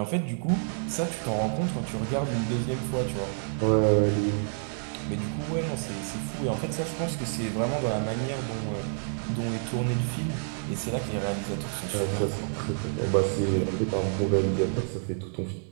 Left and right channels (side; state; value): left; silent; 59 dB below the other